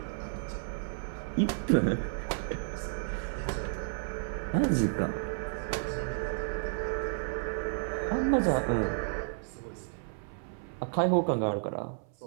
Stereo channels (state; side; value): silent; left; 56 dB below the other